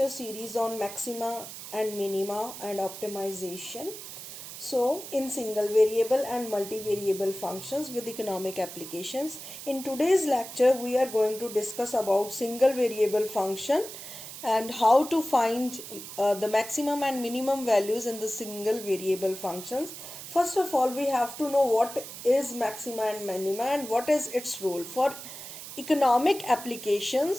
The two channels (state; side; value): noise; right; hiss, 11 dB below the sound